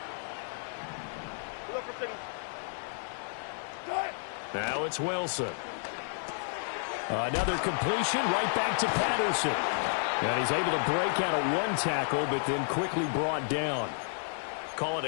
Now it's Wilson. Another completion right back to Patterson. And he's able to break out of 1 tackle, but then quickly brought down. Call it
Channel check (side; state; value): right; silent; 57 dB below the other